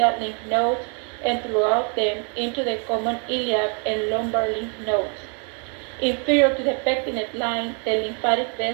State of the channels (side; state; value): left; quieter; 39.0 dB